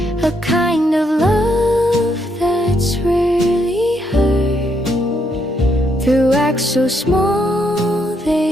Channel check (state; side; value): normal; both; correlation 0.76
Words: a kind of love that's rarely heard. Through acts so small